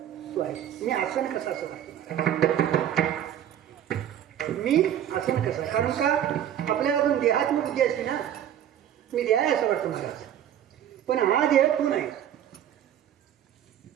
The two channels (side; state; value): left; quieter; 10.5 dB